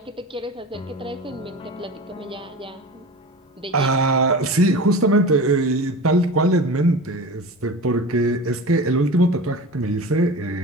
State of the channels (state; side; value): normal; both; correlation 0.33